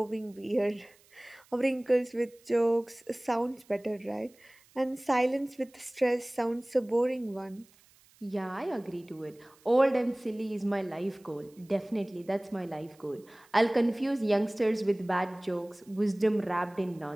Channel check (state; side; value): noise; right; hiss, 29 dB below the sound